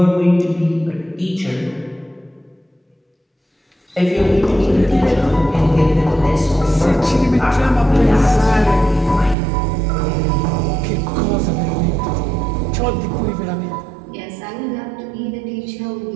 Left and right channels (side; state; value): left; drops out; at 9.3 s